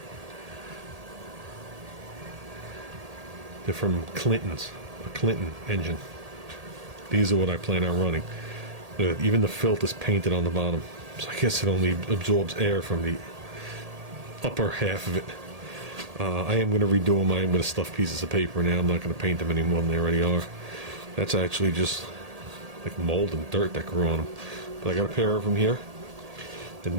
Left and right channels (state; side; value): late; left; 1.8 ms